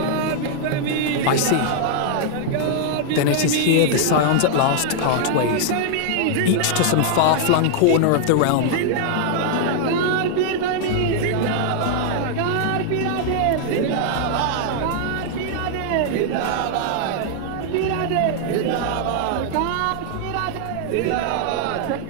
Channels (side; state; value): both; different; correlation -0.01